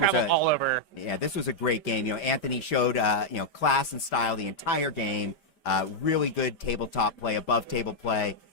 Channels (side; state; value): right; late; 5.0 ms